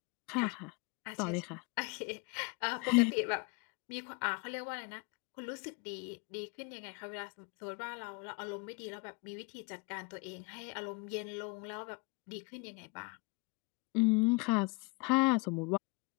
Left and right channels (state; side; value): quieter; right; 28.7 dB